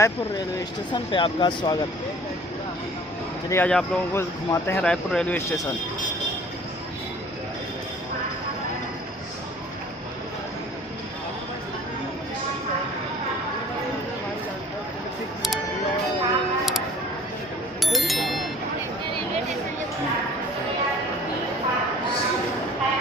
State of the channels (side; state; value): both; normal; correlation 0.49